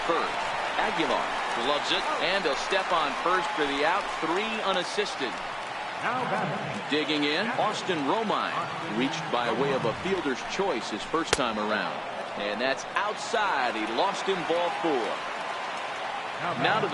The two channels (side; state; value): both; identical; correlation 1.00